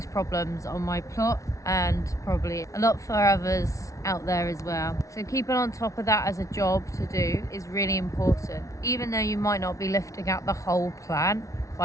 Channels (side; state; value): right; late; 0.16 ms